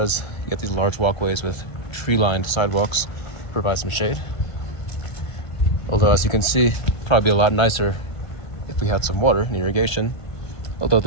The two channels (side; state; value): right; late; 1.5 ms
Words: you get these large walkways with tree-lined sidewalks to provide some shade. Although, as you can see, probably a lot nicer if we had some water and irrigation. Although